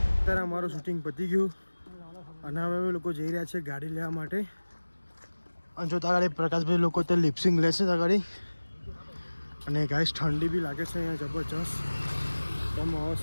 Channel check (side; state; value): both; inverted; correlation -1.00